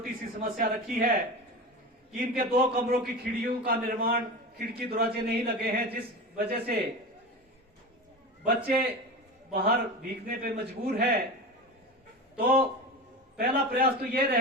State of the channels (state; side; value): normal; both; correlation 0.27